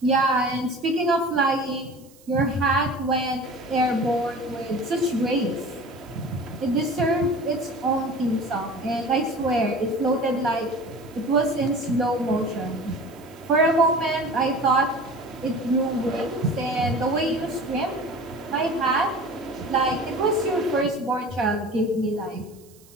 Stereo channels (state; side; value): noise; right; hiss, 27 dB below the sound